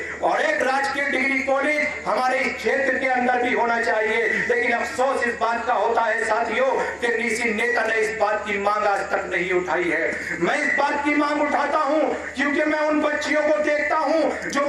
और एक राजकीय डिग्री कॉलेज हमारे इस क्षेत्र के अंदर भी होना चाहिए। लेकिन अफसोस इस बात का होता है साथियों कि किसी नेता ने इस बात की मांग आज तक नहीं उठाई है। मैं इस बात की मांग उठाता हूं क्योंकि मैं उन बच्चियों को देखता हूं जो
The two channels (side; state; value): both; identical; correlation 1.00